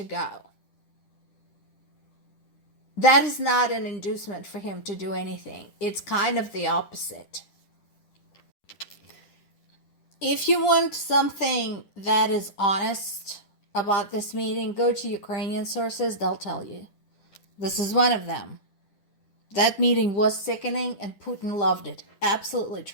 go. That is not an inducement for him to do anything. It's kind of the opposite. If you want something that is honest about this meeting, go to Ukrainian sources. They'll tell you. This is one of them. That meeting was sickening and Putin loved it. Absolutely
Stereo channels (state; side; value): late; right; 10 ms